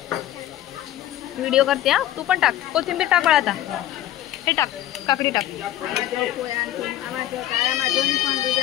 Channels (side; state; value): right; quieter; 13.2 dB